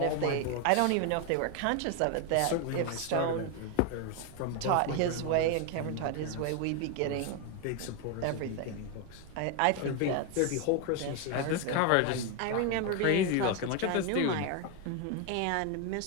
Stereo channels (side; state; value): both; different; correlation 0.01